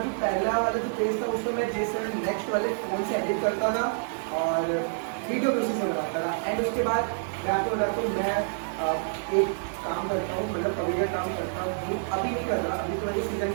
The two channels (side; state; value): left; silent; digital silence